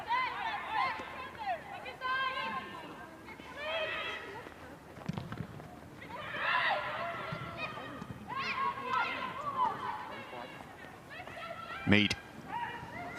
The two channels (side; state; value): both; identical; correlation 1.00